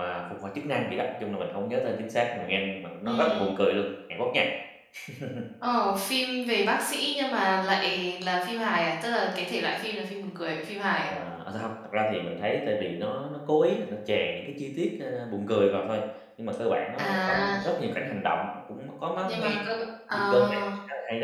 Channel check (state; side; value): identical; both; correlation 1.00